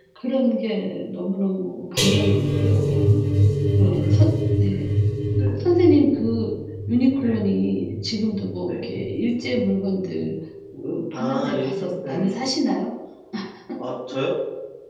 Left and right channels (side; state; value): both; identical; correlation 1.00